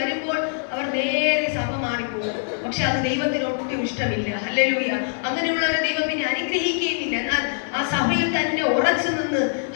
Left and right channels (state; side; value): silent; right; digital silence